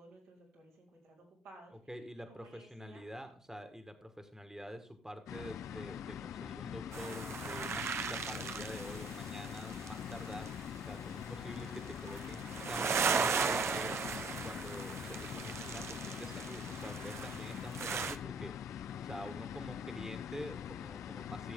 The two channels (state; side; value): normal; both; correlation 0.59